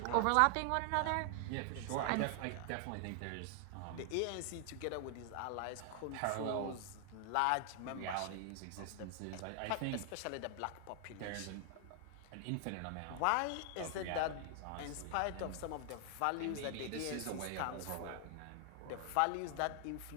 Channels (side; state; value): both; different; correlation 0.00